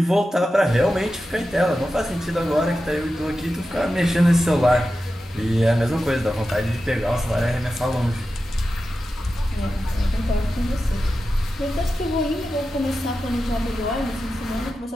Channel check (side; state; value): both; normal; correlation 0.92